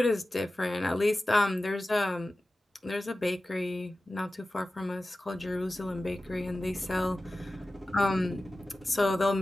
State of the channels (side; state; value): both; normal; correlation 0.95